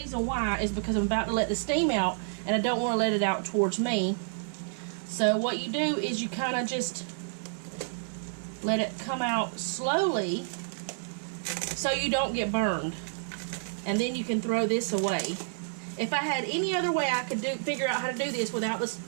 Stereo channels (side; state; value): left; silent; 58 dB below the other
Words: why is because I'm about to let the steam out, and I don't want to let it out towards me. So what you do is you kind of just let it come out slowly so you don't get burned. And then you can throw this away. If I had any other way I could figure out how to do this without the